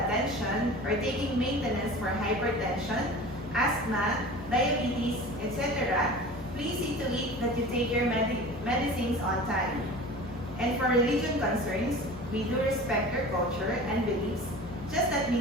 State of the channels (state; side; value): normal; both; correlation 0.37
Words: or taking maintenance for hypertension, asthma, diabetes, etc., please see to it that you take your medicines on time. And for religion concerns, we do respect your culture and beliefs. Just let